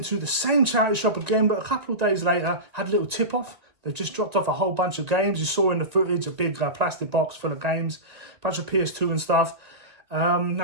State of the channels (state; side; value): late; left; 1.8 ms